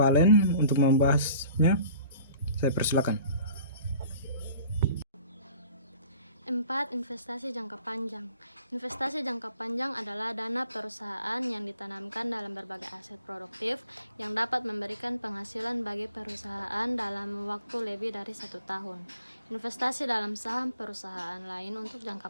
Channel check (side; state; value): both; inverted; correlation -0.50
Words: untuk membahasnya. Saya persilakan. 4. Investasi jangka panjang. Investasi jangka panjang adalah dana perusahaan yang ditanamkan dalam berbagai aset produktif yang dapat memberikan penghasilan bagi perusahaan dalam waktu lebih dari 1 tahun. Investasi dalam saham perusahaan lain untuk